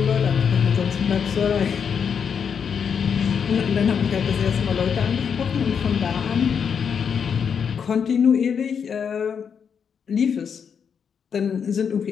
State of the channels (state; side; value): quieter; right; 7.0 dB